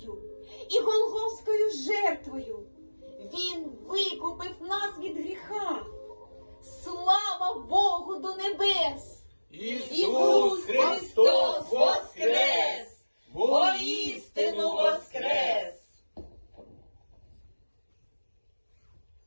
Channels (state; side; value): inverted; both; correlation -1.00